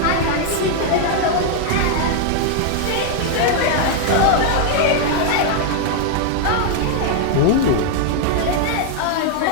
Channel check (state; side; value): different; both; correlation 0.00